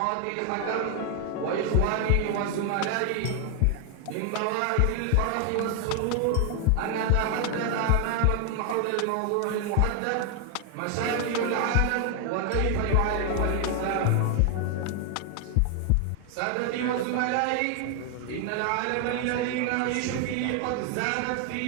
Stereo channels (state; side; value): different; both; correlation 0.00